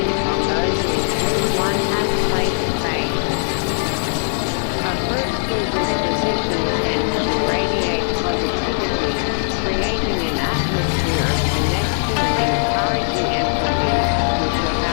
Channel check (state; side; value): silent; right; 66 dB below the other